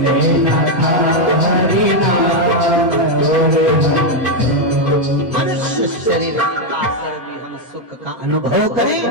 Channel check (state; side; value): normal; both; correlation 0.03